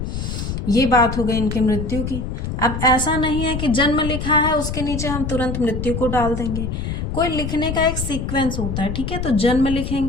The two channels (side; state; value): left; noise; rumble, 4 dB below the sound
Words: ये बात हो गई इनकी मृत्यु की। अब ऐसा नहीं है कि जन्म लिखा है उसके नीचे हम तुरंत मृत्यु को डाल देंगे, कोई लिखने का एक सीक्वेंस होता है। ठीक है, तो जन्म